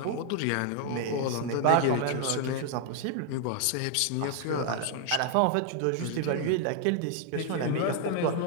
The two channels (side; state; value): both; different; correlation 0.00